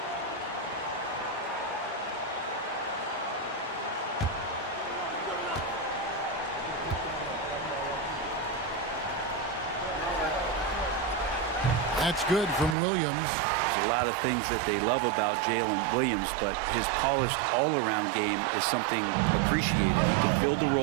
That's good from Williams. There's a lot of things that they love about Jalen Williams, but his polished all-around game is something appreciated. He can fill the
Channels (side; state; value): left; drops out; at 12.8 s